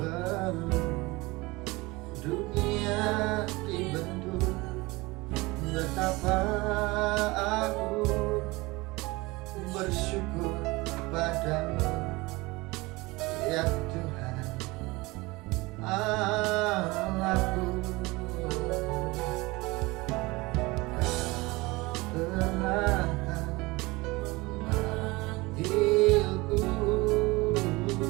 dunia dibentuk. Betapa aku bersyukur padamu, ya Tuhan Allahku. Telah memanggilku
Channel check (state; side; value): quieter; left; 22.8 dB